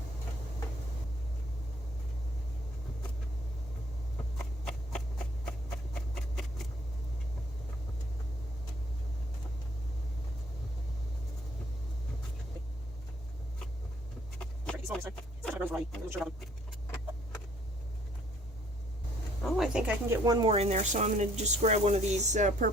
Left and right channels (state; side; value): normal; both; correlation 0.62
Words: Oh, I think I can get one more in there, so I'm going to just grab one of these